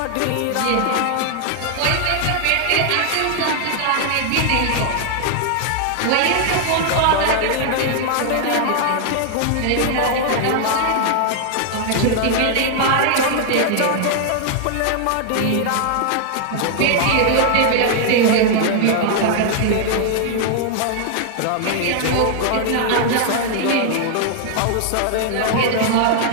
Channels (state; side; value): different; both; correlation 0.00